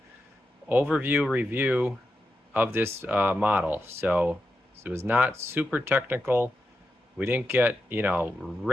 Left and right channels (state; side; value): normal; both; correlation 0.88